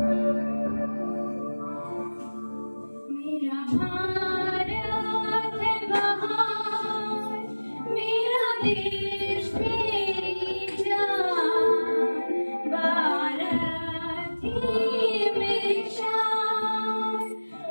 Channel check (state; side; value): inverted; both; correlation -1.00